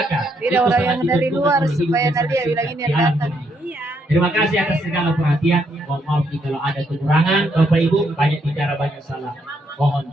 Tidak orang yang dari luar supaya tadi ya bilang ini yang datang. Terima kasih atas segala perhatian. Mohon maaf kalau ada kekurangan. Bapak Ibu banyak bicara banyak salah. Mohon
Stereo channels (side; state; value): both; normal; correlation 0.75